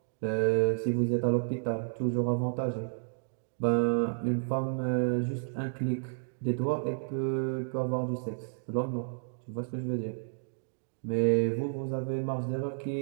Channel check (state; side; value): silent; left; digital silence